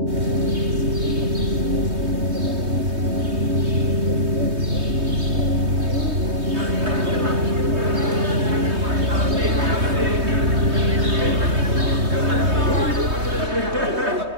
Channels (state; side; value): late; left; 3.2 ms